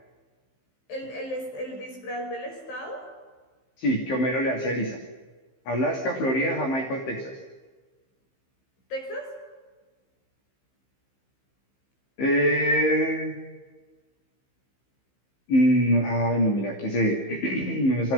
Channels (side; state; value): right; late; 15 ms